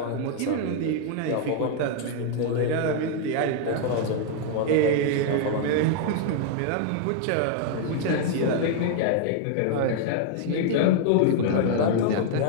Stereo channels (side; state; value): both; different; correlation 0.00